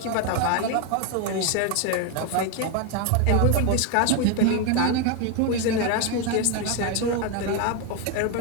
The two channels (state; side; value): different; both; correlation 0.01